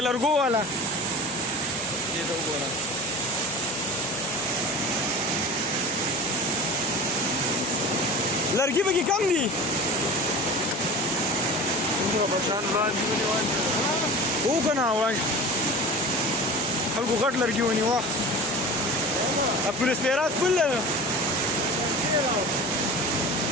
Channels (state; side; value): normal; both; correlation 0.35